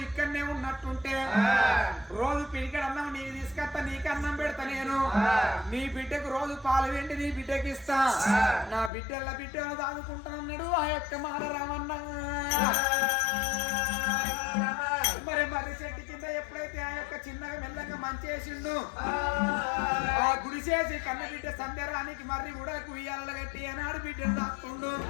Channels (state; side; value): drops out; right; at 8.9 s